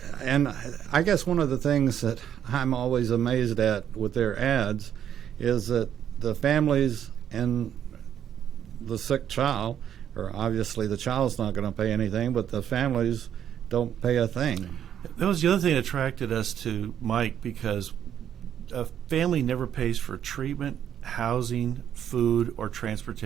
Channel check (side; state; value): left; quieter; 9.6 dB